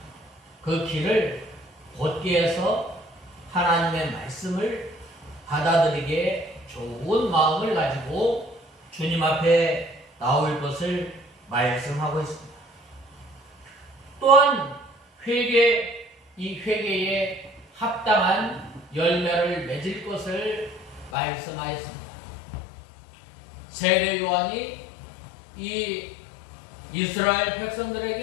그 길을 곧게 해서 하나님의 말씀을 받아들이게 좋은 마음을 가지고 주님 앞에 나올 것을 말씀하고 있습니다. 또한 이 회개에 합당한 열매를 맺을 것을 말씀하였습니다. 세례 요한이 이 이스라엘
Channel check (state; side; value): drops out; right; at 21.1 s